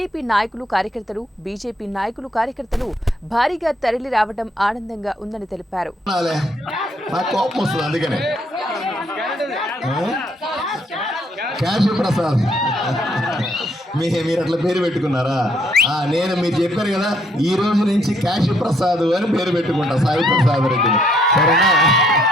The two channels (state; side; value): normal; both; correlation 0.69